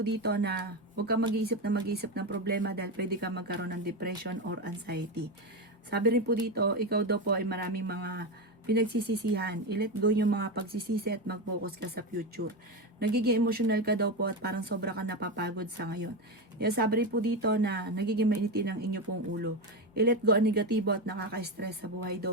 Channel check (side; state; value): both; normal; correlation 0.14